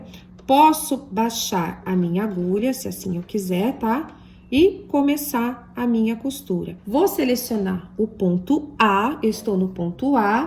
Posso baixar a minha agulha, se assim eu quiser, tá? E começar a minha costura. Vou selecionar o ponto A, eu estou no ponto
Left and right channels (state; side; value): identical; both; correlation 1.00